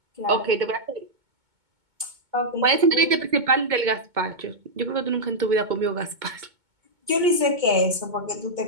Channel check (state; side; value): late; left; 2.2 ms